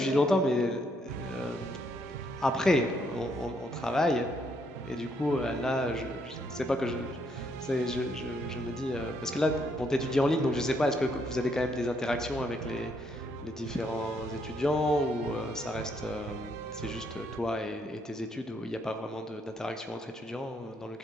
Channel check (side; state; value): both; normal; correlation 0.72